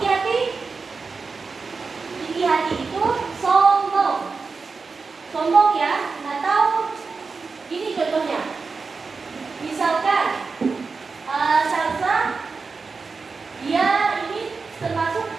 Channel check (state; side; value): quieter; left; 4.6 dB